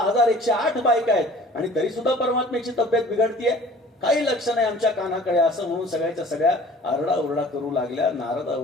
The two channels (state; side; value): normal; both; correlation 0.48